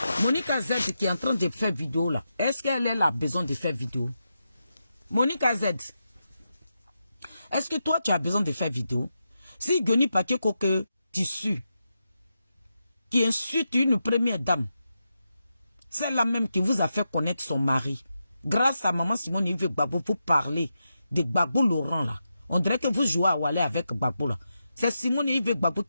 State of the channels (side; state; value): both; inverted; correlation -0.87